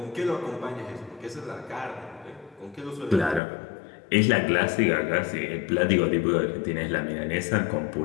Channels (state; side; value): drops out; right; at 3.4 s